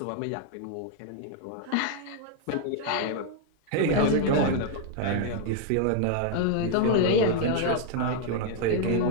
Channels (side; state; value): both; different; correlation 0.00